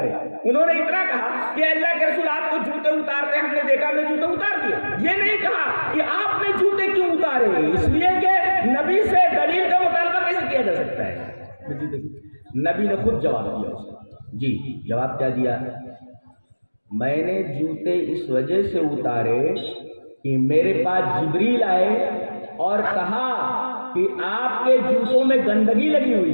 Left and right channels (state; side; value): inverted; both; correlation -1.00